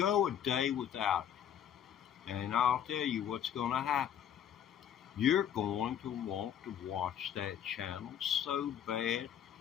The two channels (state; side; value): quieter; right; 9.5 dB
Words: a day without it. And I'll tell you what's going to happen. You're going to want to watch that channel so bad,